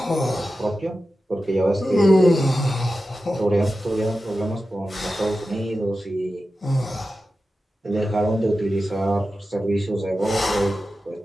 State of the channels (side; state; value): both; normal; correlation 0.93